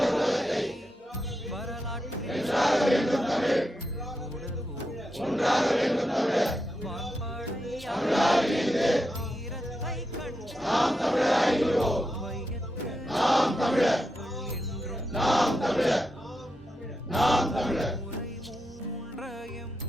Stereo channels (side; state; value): both; normal; correlation 0.86